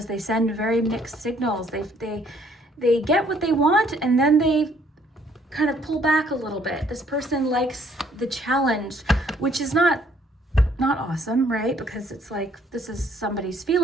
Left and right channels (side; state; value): both; normal; correlation 0.64